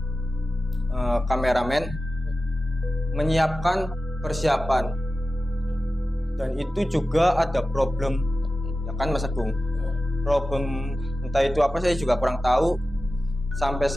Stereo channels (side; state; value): both; normal; correlation 0.94